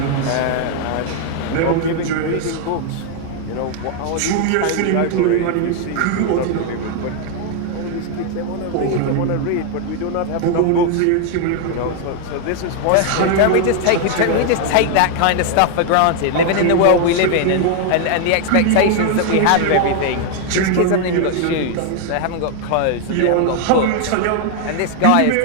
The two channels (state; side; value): different; both; correlation 0.00